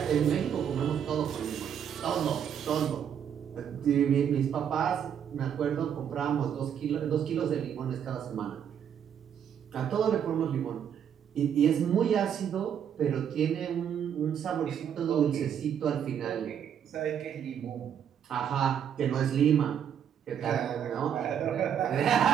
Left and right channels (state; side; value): quieter; left; 8.6 dB